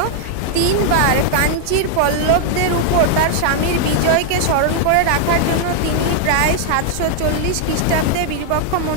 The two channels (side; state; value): both; different; correlation 0.00